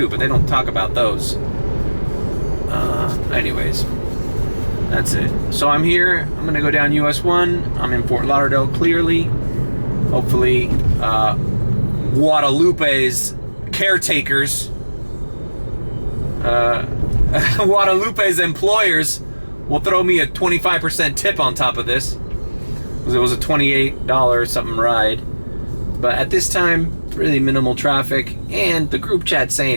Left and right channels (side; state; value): both; inverted; correlation -1.00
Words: but they don't talk about those. Anyways, that's it. So I'm here. I'm gonna go down US 1. I'm in Fort Lauderdale. Clearly, hopefully, Guadalupe's caretakers. Guadalupe's employers will throw me a 25% tip on top of this, because it was a $28 something ride. But at this time, really minimal traffic, and the group chat